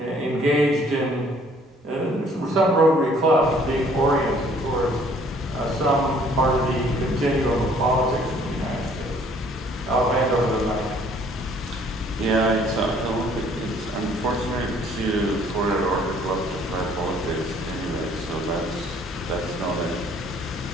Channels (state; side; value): normal; both; correlation 0.59